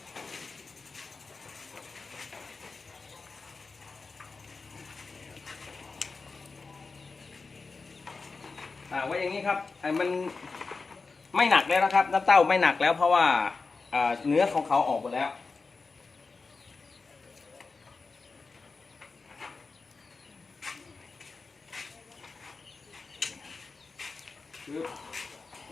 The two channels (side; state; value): right; quieter; 4.3 dB